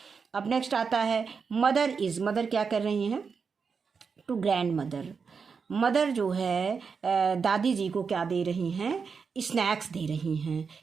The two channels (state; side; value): quieter; left; 5.6 dB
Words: अब नेक्स्ट आता है मदर इज, मदर क्या कर रही हैं, टू ग्रैंड मदर, मदर जो है दादी जी को क्या दे रही हैं, स्नैक्स दे रही हैं।